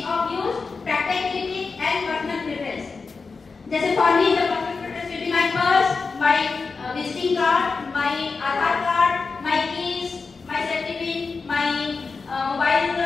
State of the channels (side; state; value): right; quieter; 4.5 dB